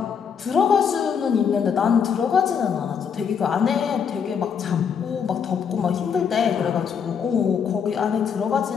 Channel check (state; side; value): quieter; right; 7.0 dB